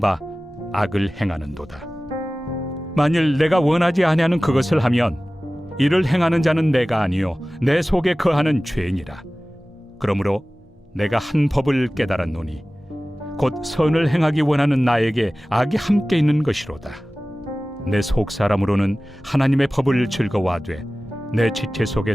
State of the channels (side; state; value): both; normal; correlation 0.97